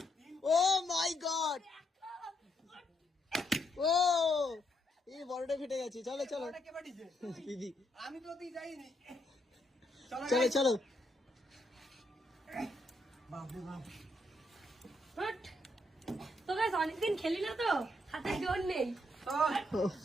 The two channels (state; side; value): normal; both; correlation 0.76